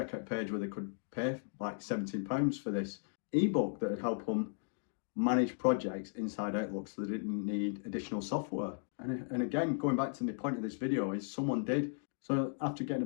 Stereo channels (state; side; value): silent; right; digital silence